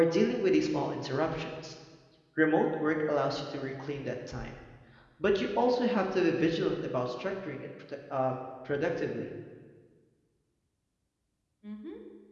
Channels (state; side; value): identical; both; correlation 1.00